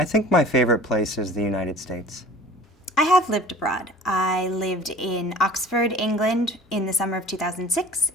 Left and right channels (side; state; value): both; normal; correlation 0.44